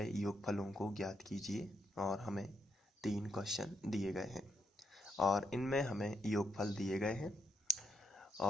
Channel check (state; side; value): normal; both; correlation 0.79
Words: योगफलों को ज्ञात कीजिए और हमें 3 क्वेश्चन दिए गए हैं और इनमें हमें योगफल दिए गए हैं।